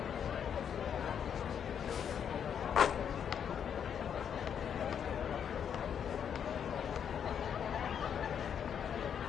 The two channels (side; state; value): right; quieter; 8.1 dB